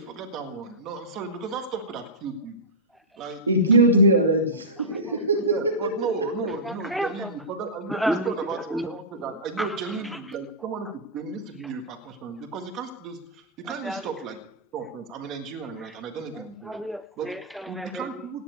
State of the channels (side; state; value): both; normal; correlation -0.17